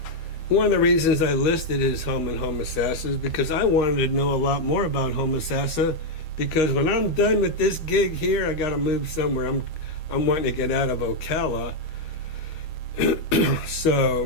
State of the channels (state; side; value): late; right; 13 ms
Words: One of the reasons I listed his home in Homosassa is because I wanted to know a lot more about Homosassa, because when I'm done with this gig here, I got to move somewhere. I'm wanting to get out of Ocala.